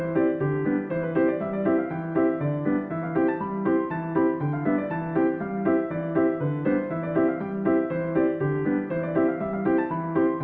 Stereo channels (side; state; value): both; identical; correlation 1.00